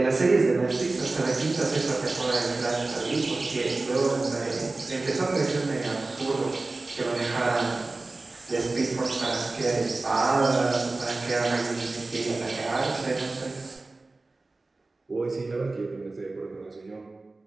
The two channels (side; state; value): left; quieter; 3.3 dB